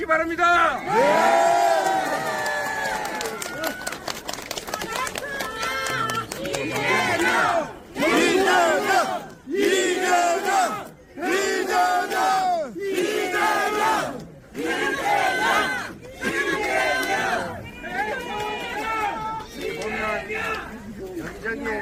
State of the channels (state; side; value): identical; both; correlation 1.00